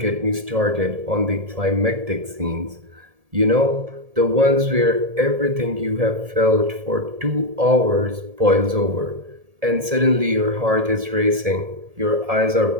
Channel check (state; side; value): late; left; 1.7 ms